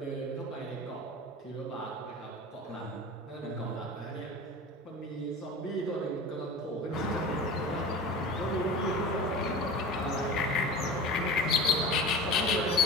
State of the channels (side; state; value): both; normal; correlation 0.35